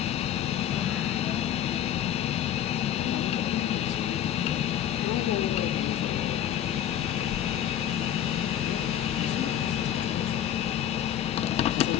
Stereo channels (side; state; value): right; quieter; 10.9 dB